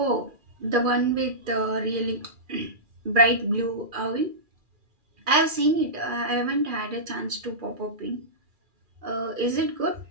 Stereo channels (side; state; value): left; late; 2.4 ms